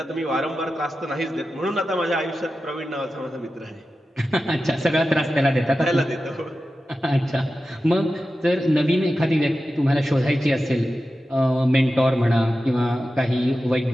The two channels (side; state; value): both; normal; correlation 0.93